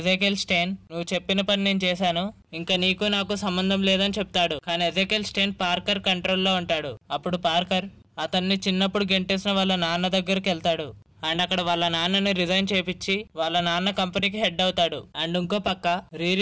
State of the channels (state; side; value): identical; both; correlation 1.00